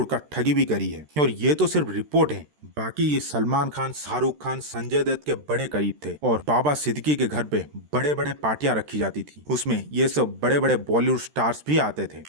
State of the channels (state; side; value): late; left; 13 ms